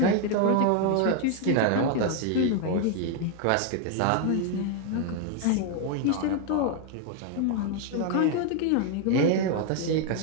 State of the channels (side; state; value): both; different; correlation 0.01